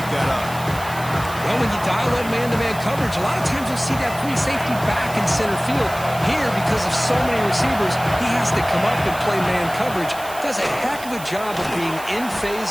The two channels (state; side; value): noise; right; hiss, 15 dB below the sound